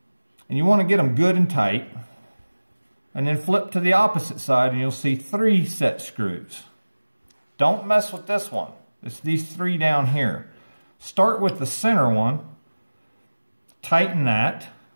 And you want to get them good and tight. And then flip to the opposite side and you'll see 3 set screws. Don't mess with this one. It's these 3 down here. Start with the center one, tighten that,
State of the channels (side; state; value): both; inverted; correlation -1.00